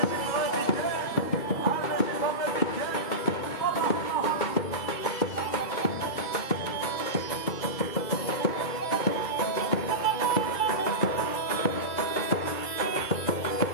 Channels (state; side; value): late; right; 2.1 ms